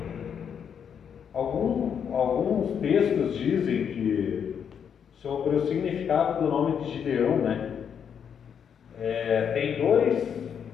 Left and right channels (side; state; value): right; quieter; 7.7 dB